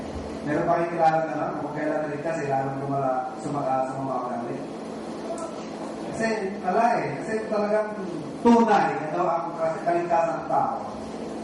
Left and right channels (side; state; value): both; identical; correlation 1.00